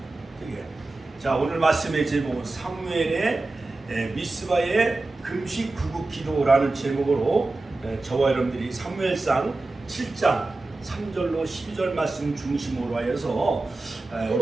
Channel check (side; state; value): left; quieter; 3.2 dB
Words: 되게. 자, 오늘 말씀의 제목은 사무엘의 미스바의 금식 구국 기도라는 제목으로 저와 여러분들이 사무엘상 7장 3절로 12절 말씀 중심으로 하여서